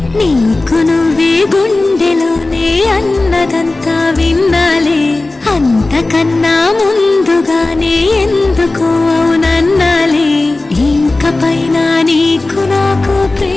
నీకు నువ్వే గుండెలోనే అన్నదంతా విన్నాలే, అంతకన్నా ముందుగానే ఎందుకు అవునన్నాలే. ఇంక పైన నీకు నాకు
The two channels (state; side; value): quieter; right; 3.1 dB